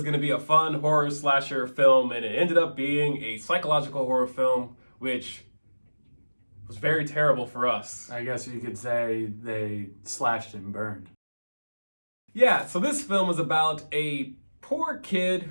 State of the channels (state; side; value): inverted; both; correlation -1.00